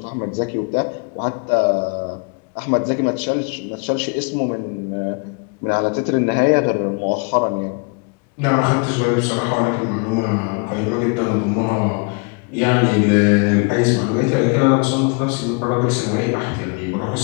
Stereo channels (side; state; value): right; quieter; 34.0 dB